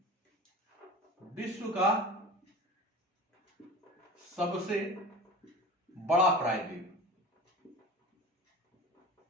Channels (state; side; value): normal; both; correlation 0.35